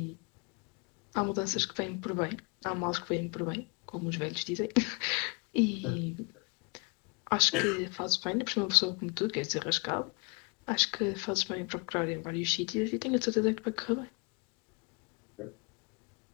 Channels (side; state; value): right; quieter; 31.0 dB